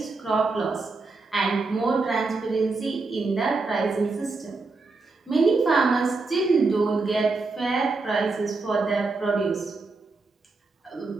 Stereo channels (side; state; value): left; quieter; 3.8 dB